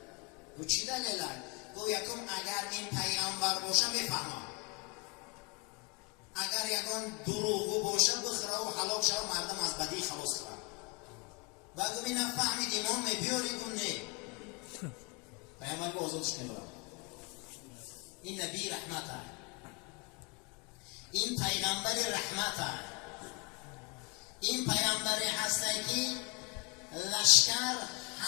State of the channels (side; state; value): right; quieter; 29.7 dB